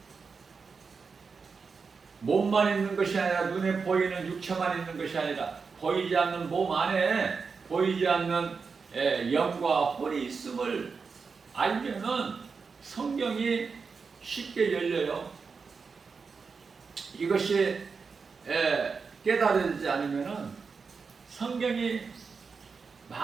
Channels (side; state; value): left; quieter; 5.1 dB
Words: 몸만 있는 것이 아니라 눈에 보이는 육체만 있는 것이 아니라 보이지 않는 몸 안에 보이지 않는 영과 혼이 있음을 알면은 성경이 쉽게 열려요. 이것이 깨달아지지 않으면은 성경이